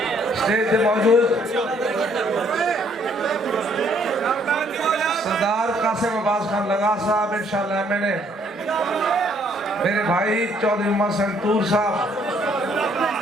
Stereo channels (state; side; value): normal; both; correlation 0.65